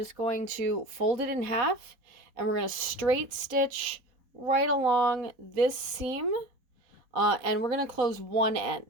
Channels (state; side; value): late; left; 4.0 ms